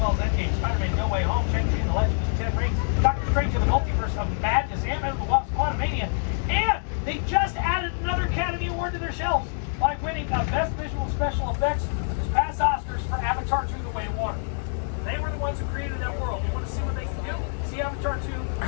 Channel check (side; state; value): right; silent; digital silence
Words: as Endgame, Spider-Man No Way Home, Shang-Chi and the Legend of the Ten Rings, Doctor Strange and the Multiverse of Madness, Ant-Man and the Wasp, Quantumania, and they just added another Academy Award to their shelves by winning Best Visual Special Effects this past Oscars for Avatar 2: The Way of Water. They were the ones who created that world. You want to see what they can do? See Avatar 2? I